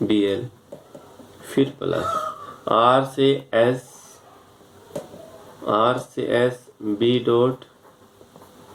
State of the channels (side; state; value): both; identical; correlation 1.00